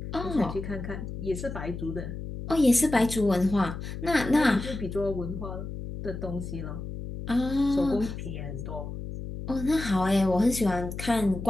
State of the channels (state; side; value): noise; left; hum, 8 dB below the sound